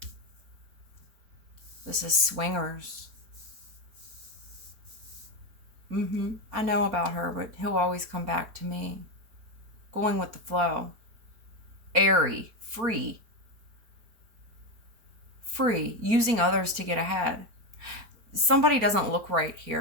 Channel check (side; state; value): left; late; 4.4 ms